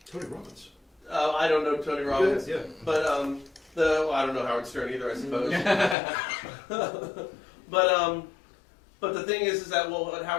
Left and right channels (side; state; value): right; drops out; at 6.0 s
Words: Tony Robbins. I don't know Tony Robbins, Yeah. but I don't know Howard Stern either, I suppose. But the thing is that what